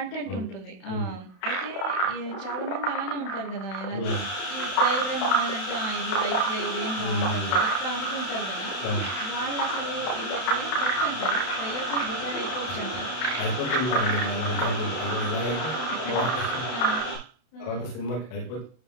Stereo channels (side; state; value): right; late; 32 ms